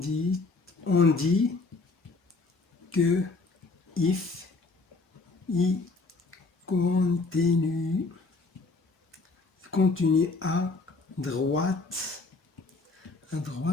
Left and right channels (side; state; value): right; quieter; 3.7 dB